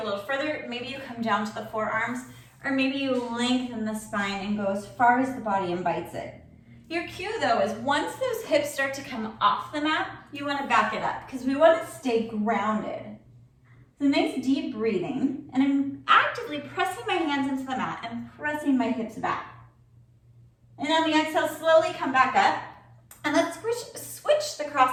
a little further. Maybe you come down to the forearms, or maybe you lengthen the spine and go as far as the body invites it. Your cue though is once those hips start to come off the mat, you want to back it up because we want to stay grounded. So nice deep breathing, and I'm actively pressing my hands into the mat and pressing my hips back. And on the exhale, slowly come back up, and let's switch the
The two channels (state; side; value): identical; both; correlation 1.00